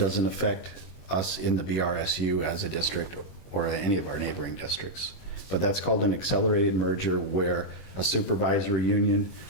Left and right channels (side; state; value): right; late; 21 ms